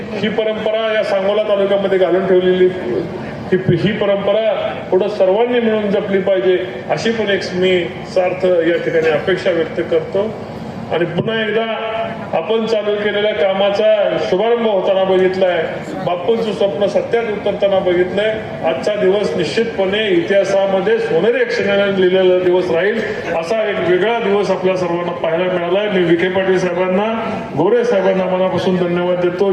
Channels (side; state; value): both; identical; correlation 1.00